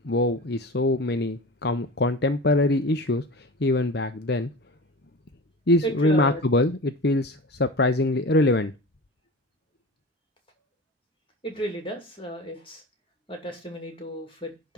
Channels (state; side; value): normal; both; correlation 0.32